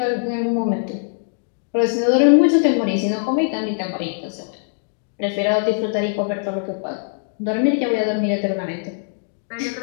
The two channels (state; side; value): silent; right; digital silence